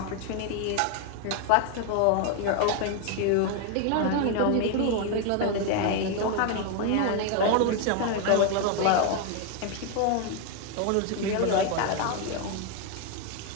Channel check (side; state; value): both; different; correlation 0.01